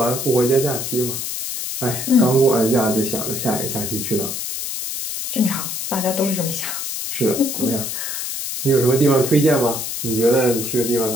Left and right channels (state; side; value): noise; left; hiss, 4 dB below the sound